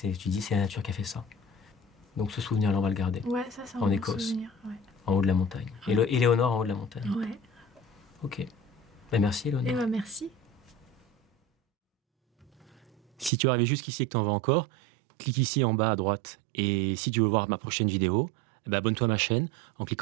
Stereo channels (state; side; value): drops out; left; at 13.3 s